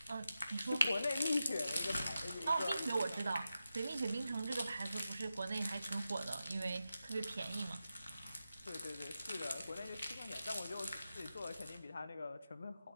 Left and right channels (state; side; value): inverted; both; correlation -0.90